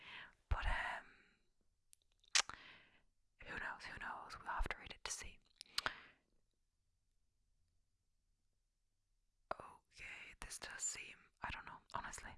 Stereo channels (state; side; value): identical; both; correlation 1.00